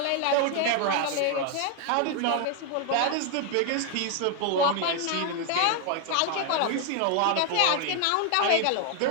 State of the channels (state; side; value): different; both; correlation 0.01